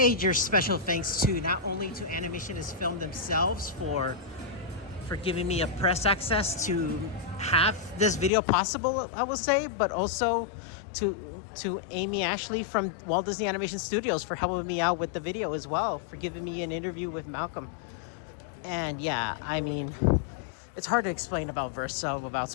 special thanks to not only to Animation is Film themselves for giving me a press access to have this video possible, I will say, but also to Amy Ashley from Walt Disney Animation Studios for helping me out with the video as well, for giving me an interview with Malcolm. And yeah, I mean, it's hard to explain about Verso without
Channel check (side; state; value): right; drops out; at 8.3 s